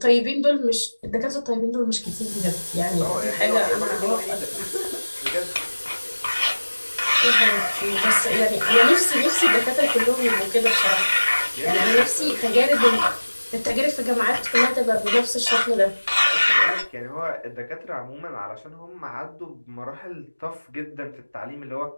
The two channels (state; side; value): inverted; both; correlation -1.00